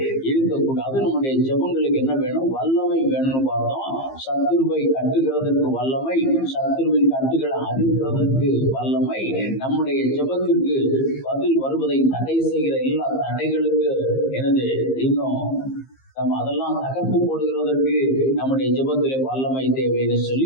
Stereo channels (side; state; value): right; late; 15 ms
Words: இருக்கக்கூடாது. நம்முடைய ஜெபங்களுக்கு என்ன வேணும்? வல்லமை வேணும்னு பார்த்தோம். சத்துருவை கட்டுகிறதற்கு வல்லமை, சத்துருவின் கட்டுகளை அறுக்கிறதற்கு வல்லமை, நம்முடைய ஜெபத்திற்கு பதில் வருவதை தடை செய்கிற எல்லா தடைகளுக்கு எனது இன்னும் நம்ம அதெல்லாம் தகர்த்து போடுகிறதற்கு நம்முடைய ஜெபத்திலே வல்லமை தேவைன்னு